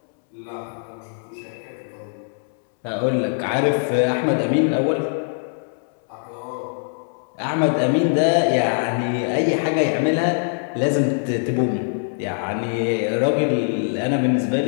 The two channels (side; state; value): right; silent; 64 dB below the other